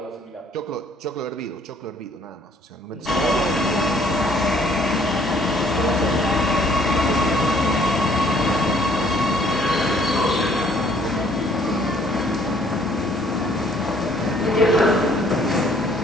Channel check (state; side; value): normal; both; correlation 0.61